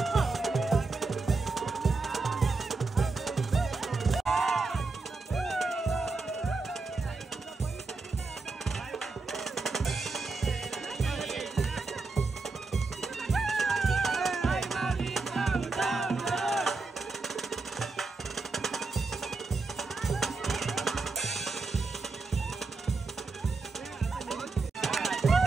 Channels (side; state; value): left; quieter; 3.9 dB